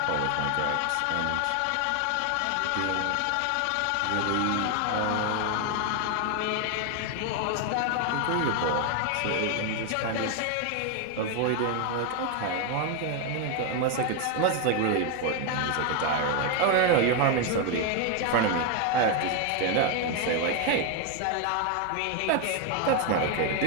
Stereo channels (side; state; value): both; different; correlation 0.01